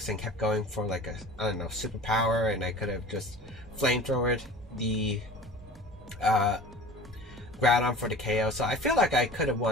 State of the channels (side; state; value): both; normal; correlation 0.40